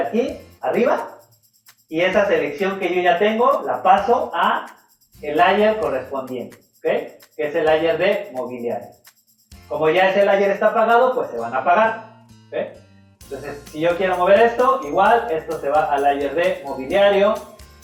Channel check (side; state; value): both; identical; correlation 1.00